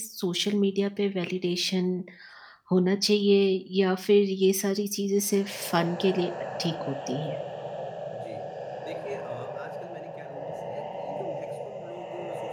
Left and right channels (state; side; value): identical; both; correlation 1.00